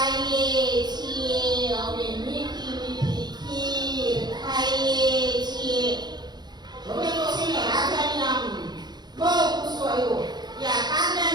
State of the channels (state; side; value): late; left; 0.20 ms